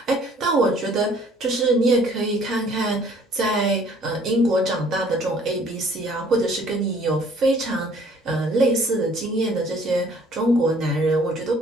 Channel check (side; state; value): both; normal; correlation 0.57